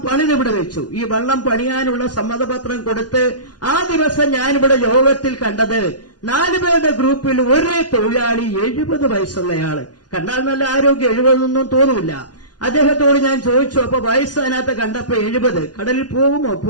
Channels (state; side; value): late; right; 0.69 ms